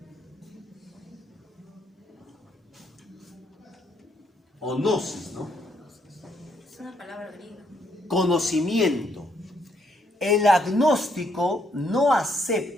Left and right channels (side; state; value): both; normal; correlation 0.73